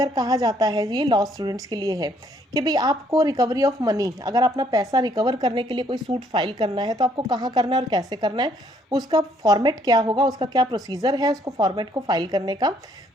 कहा जाता है, ये लॉ स्टूडेंट्स के लिए है कि भाई आपको रिकवरी ऑफ मनी, अगर अपना पैसा रिकवर करने के लिए कोई सूट फाइल करना है तो आपको कहाँ करना है और कैसे करना है, उसका फॉर्मेट क्या होगा, उसका क्या प्रोसीजर है उसको फॉर्मेट को फाइल करने का।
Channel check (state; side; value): normal; both; correlation 0.66